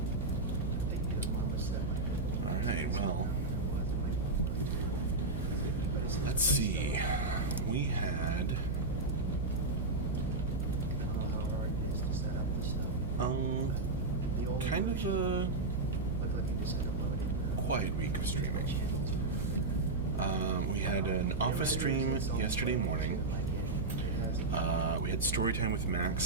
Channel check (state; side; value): noise; right; hum, 2 dB below the sound